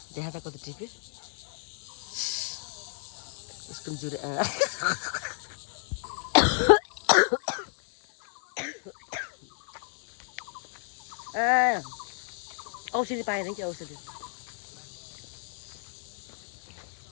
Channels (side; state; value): right; silent; 57 dB below the other